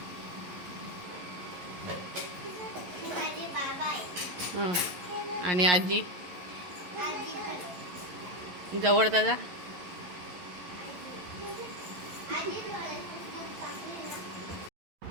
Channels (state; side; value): late; left; 11 ms